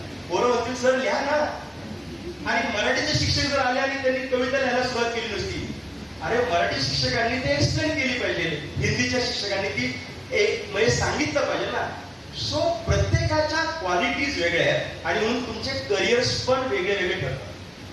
पोरं म्हणतील सर लिहा ना. आणि मराठीचे शिक्षक जर आले आणि त्यांनी कविता लिहायला सुरुवात केली नसती, अरे मराठी शिक्षकांनी ते एक्सप्लेन केली पाहिजे, हिंदीच्या शिक्षकांनी ती एक म्हणजे सांगितलं पाहिजे ना. सो प्रत्येकाच्या प्रत्येकाच्या क्वालिटीज वेगळ्या आहेत आणि म्हणून तुमचे करिअर्स पण वेगळे वेगळे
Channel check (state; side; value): identical; both; correlation 1.00